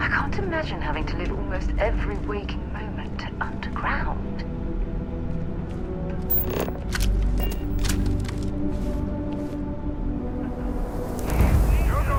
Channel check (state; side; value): identical; both; correlation 1.00